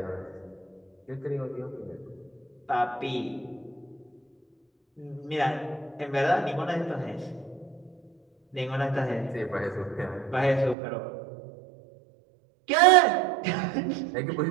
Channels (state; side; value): drops out; left; at 10.8 s